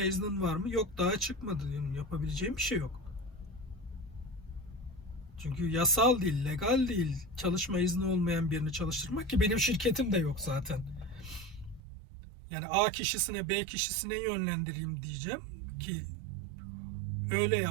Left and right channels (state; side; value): drops out; left; at 11.8 s